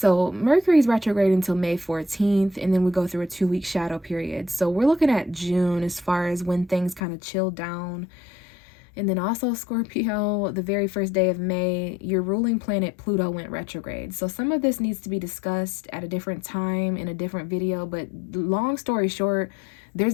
Mercury's retrograde until May 14th, and then we go through a 2-week shadow period. So we're looking at June as far as when things kind of chill down. And then also Scorpio, the very first day of May, your ruling planet Pluto went retrograde. So some of this needs to be discussed at a different time in a different video, but long story short,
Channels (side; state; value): right; drops out; at 7.0 s